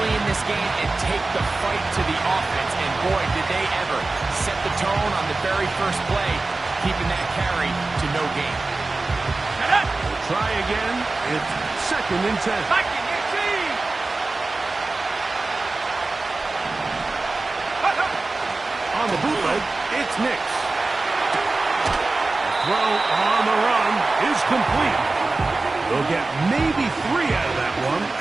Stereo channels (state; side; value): quieter; left; 3.4 dB